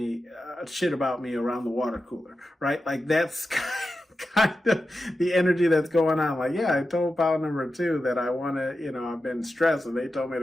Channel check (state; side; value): normal; both; correlation 0.91